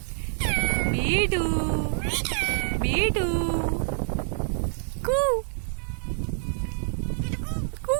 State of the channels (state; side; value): silent; left; 60 dB below the other